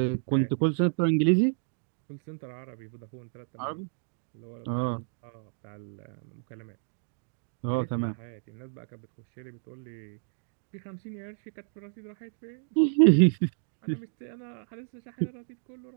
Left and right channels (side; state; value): left; silent; digital silence